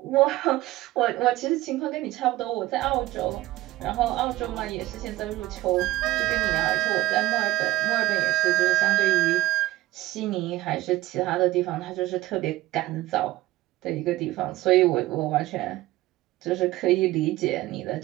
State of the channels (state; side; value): quieter; left; 16.9 dB